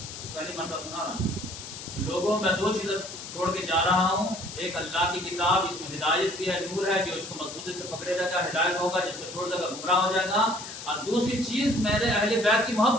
پہلی مرتبہ سنا رہا ہوں. لوگوں میں دو چیزیں چھوڑ کے جا رہا ہوں, ایک اللہ کی کتاب, اس میں ہدایت بھی ہے, نور ہے, جو اس کو مضبوطی سے پکڑے رہے گا ہدایت ہوگا, جس کو چھوڑ دے گا گمراہ ہو جائے گا. اور دوسری چیز میرے اہل بیت کی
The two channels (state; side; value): noise; left; hiss, 11 dB below the sound